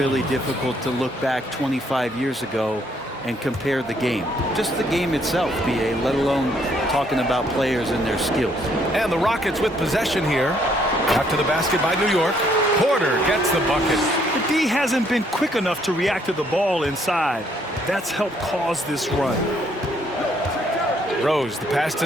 difficult to look back 25 years ago and compare the game. Just the game itself, B.A., let alone talking about players and their skills. And the Rockets with possession here. After the basket by New York. Porter gets the bucket. The D hasn't been quick enough to react to the ball inside. That's helped cause this run. Rose, the pass to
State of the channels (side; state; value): both; normal; correlation 0.68